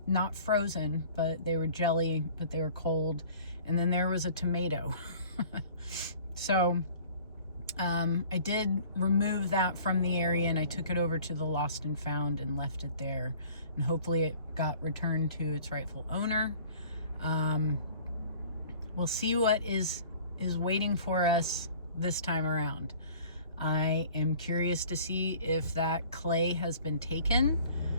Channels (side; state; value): both; inverted; correlation -0.49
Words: frozen, but they were jelly, but they were cold. And then there was a tomato. So I did remove that from the area and I took it over to the Lost and Found and left it there. And hopefully it got returned to its rightful owner. We'll see what is waiting for us this time around. I am curious to see if that clay has been taken.